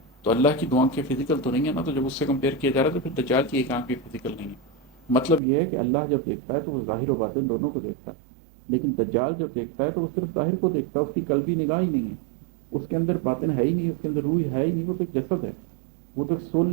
تو اللہ کی دو آنکھیں فزیکل تو نہیں ہے نا، تو جب اس سے کمپیئر کیا جا رہا ہے تو پھر دجال کی ایک آنکھ بھی فزیکل نہیں ہے۔ مطلب یہ ہے کہ اللہ جب دیکھتا ہے تو وہ ظاہر و باطن دونوں کو دیکھتا ہے، لیکن دجال جب دیکھتا ہے تو وہ صرف ظاہر کو دیکھتا ہے، اس کی قلبی نگاہ ہی نہیں ہے، اس کے اندر باطن ہے ہی نہیں، اس کے اندر روح ہے ہی نہیں، وہ تو ایک جسد ہے، وہ تو ایک سول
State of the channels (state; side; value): drops out; left; at 5.4 s